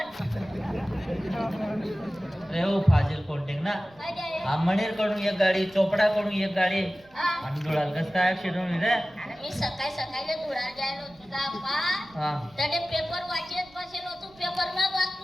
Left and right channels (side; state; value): right; noise; rumble, 28 dB below the sound